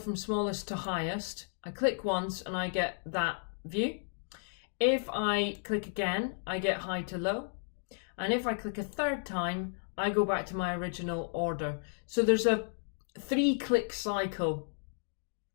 smallest to highest, I click once and I get that view. If I click again, I get high to low. And if I click a third time, I go back to my original order. So there's a 3-click cycle.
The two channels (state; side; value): silent; right; digital silence